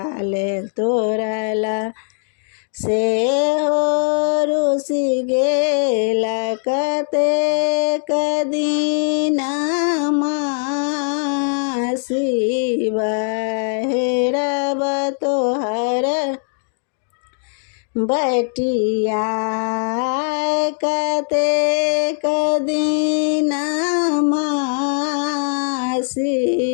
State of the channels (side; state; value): right; silent; digital silence